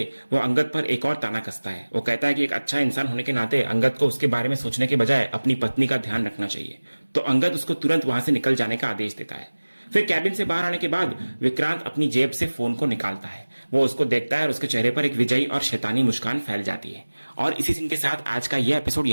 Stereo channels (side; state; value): both; inverted; correlation -1.00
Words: वो अंगद पर एक और ताना कसता है। वो कहता है कि एक अच्छा इंसान होने के नाते अंगद को उसके बारे में सोचने के बजाय अपनी पत्नी का ध्यान रखना चाहिए। तो अंगद उसको तुरंत वहां से निकल जाने का आदेश देता है। फिर कैबिन से बाहर आने के बाद विक्रांत अपनी जेब से फोन को निकालता है। वो उसको देखता है और उसके चेहरे पर एक विजयी और शैतानी मुस्कान फैल जाती है। और इसी सीन के साथ आज का यह एपिसोड